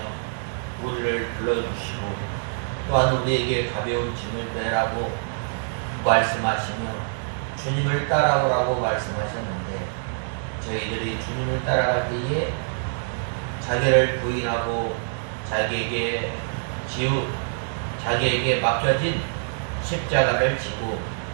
우리를 불러주시고 또한 우리에게 가벼운 짐을 내라고 말씀하시며 주님을 따라오라고 말씀하셨는데 저희들이 주님을 따라갈 때에 자기를 부인하고 자기에게 맡겨진 십자가를 지고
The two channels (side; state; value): left; silent; digital silence